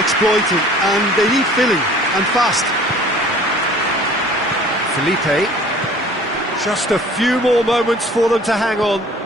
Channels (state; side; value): normal; both; correlation 0.49